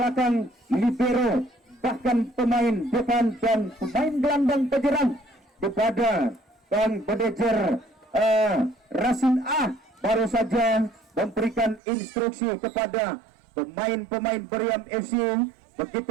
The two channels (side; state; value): left; drops out; at 11.8 s